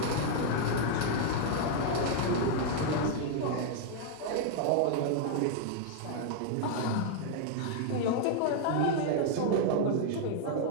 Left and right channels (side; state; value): both; different; correlation 0.00